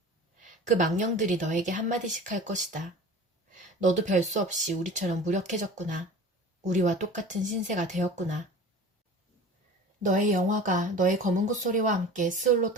그 망령들이 너에게 한마디씩 할 것이다. 너도 별 수 없이 우리처럼 무력해졌구나. 우리와 똑같은 신세가 되었구나. 너의 영화가 너의 검은 콧소리와 함께 스올로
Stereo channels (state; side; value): normal; both; correlation 0.39